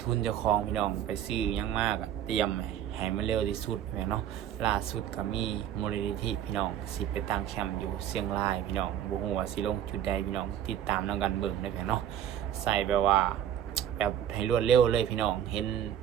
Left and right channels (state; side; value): quieter; left; 10.4 dB